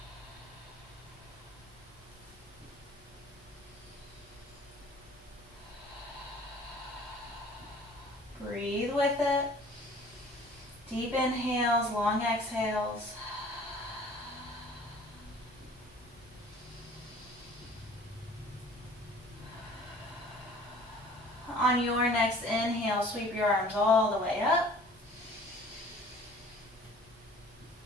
Breathe with it. Deep inhales, long exhales. On your next inhale, sweep your arms all the way up.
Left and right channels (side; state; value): both; normal; correlation 0.49